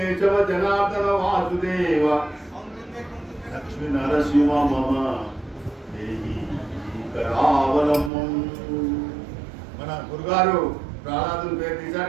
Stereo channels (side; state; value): left; drops out; at 8.1 s